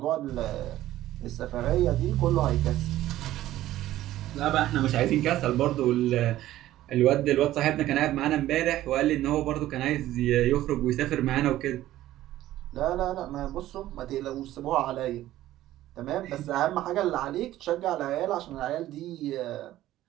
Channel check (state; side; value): quieter; left; 14.4 dB